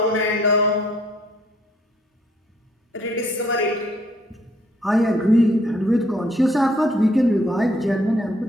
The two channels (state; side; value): normal; both; correlation 0.65